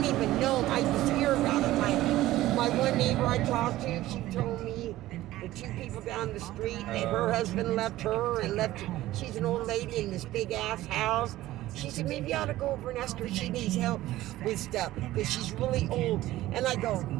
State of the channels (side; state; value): left; quieter; 15.8 dB